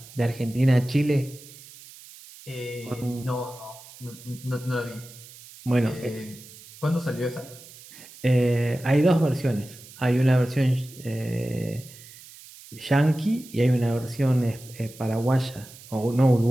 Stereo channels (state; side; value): noise; right; hiss, 19 dB below the sound